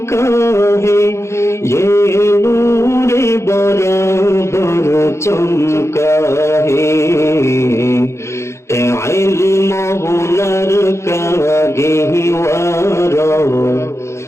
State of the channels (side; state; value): right; late; 0.13 ms